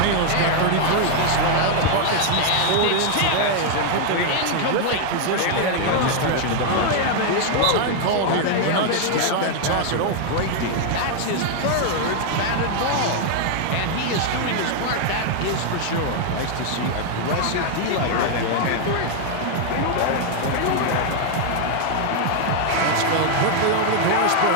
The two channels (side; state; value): both; different; correlation 0.00